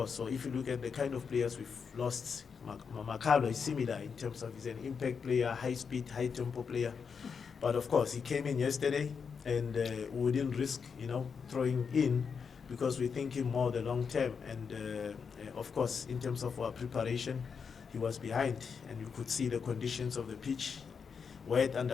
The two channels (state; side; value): quieter; right; 6.0 dB